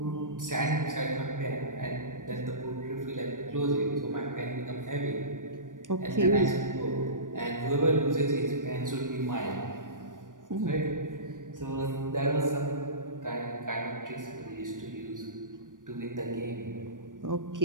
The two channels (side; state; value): left; late; 0.88 ms